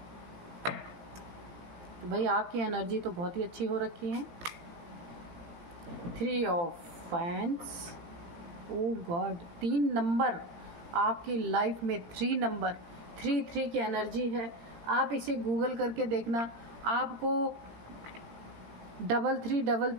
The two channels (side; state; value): left; late; 18 ms